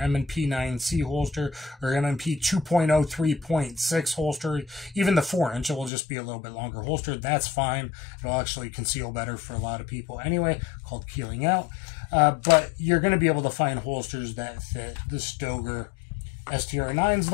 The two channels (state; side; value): drops out; right; at 5.9 s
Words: 9C holster, or M&P 2.0 3.6 holster, even the 4-inch, it will just be a little bit longer holster. That's fine. It'll actually conceal better for a lot of people anyway, called keeling out. But you're going to be able to find holsters that fit the Stoeger STR-9 is